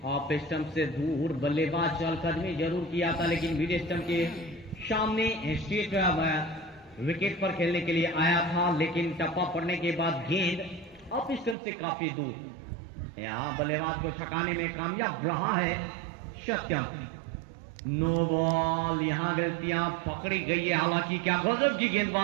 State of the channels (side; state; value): left; drops out; at 11.6 s